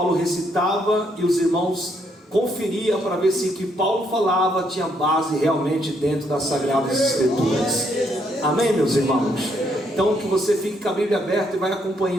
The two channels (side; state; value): both; normal; correlation 0.73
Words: recitava e os irmãos conferiam para ver se o que Paulo falava tinha base realmente dentro das Sagradas Escrituras. Amém, meus irmãos? Então que você fique com a Bíblia aberta e vai